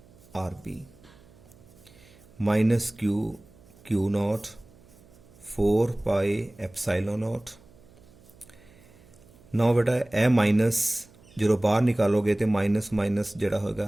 RB माइनस Q नॉट 4 पाई एप्सिलॉन नॉट। ना बेटा ए माइनस जो बाहर निकालोगे तो माइनस जोड़ा होगा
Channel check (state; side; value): noise; right; hum, 26 dB below the sound